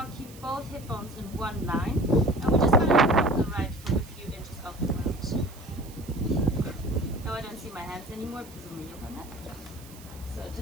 keep both hip bones in one line. And we're just going to lift up the right foot a few inches off the ground. Now I don't see my hands anymore because of my yoga mat. So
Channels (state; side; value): noise; right; hiss, 20 dB below the sound